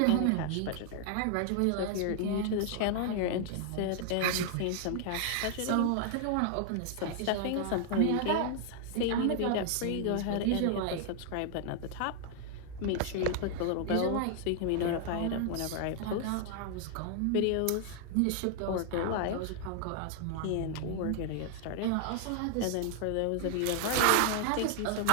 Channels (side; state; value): both; different; correlation 0.00